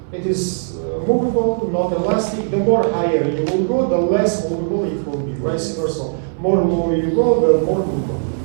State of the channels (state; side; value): silent; left; 65 dB below the other